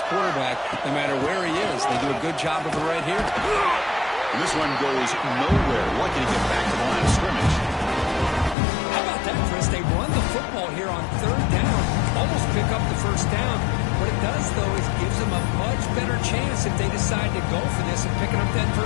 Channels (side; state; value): right; drops out; at 8.6 s